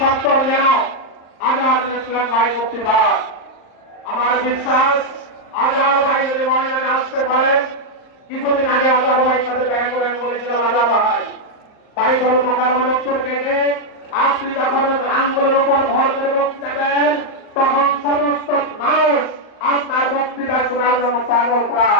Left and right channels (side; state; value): right; late; 38 ms